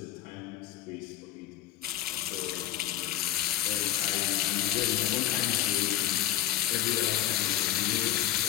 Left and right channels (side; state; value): right; quieter; 12.8 dB